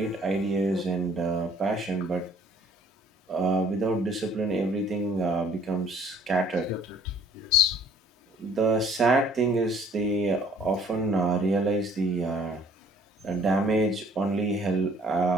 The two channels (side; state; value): both; normal; correlation 0.57